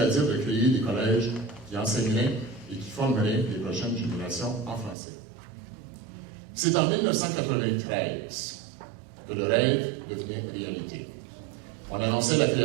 de créer des collèges qui enseigneraient et qui formeraient les prochaines générations en français. C'est en 1993 que le rêve devenait réalité. On annonçait la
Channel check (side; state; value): left; drops out; at 5.0 s